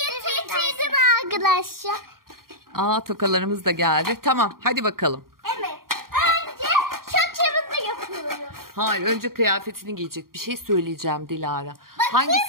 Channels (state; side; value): late; left; 0.92 ms